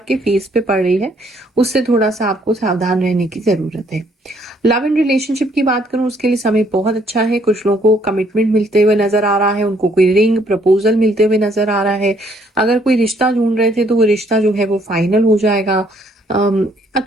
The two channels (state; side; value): normal; both; correlation 0.66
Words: फेस पे पड़ रही है। उससे थोड़ा सा आपको सावधान रहने की जरूरत है। लव एंड रिलेशनशिप की बात करूं, उसके लिए समय बहुत अच्छा है। कुछ लोगों को कमिटमेंट मिलते हुए नजर आ रहा है, उनको कोई रिंग प्रपोजल मिलते हुए नजर आ रहा है। अगर कोई रिश्ता ढूंढ रहे थे तो वो रिश्ता जो है वो फाइनल हो जाएगा।